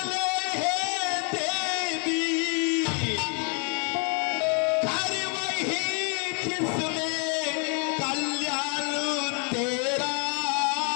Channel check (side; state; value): right; quieter; 37.2 dB